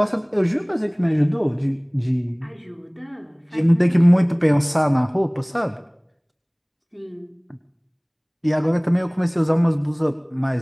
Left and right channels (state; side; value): identical; both; correlation 1.00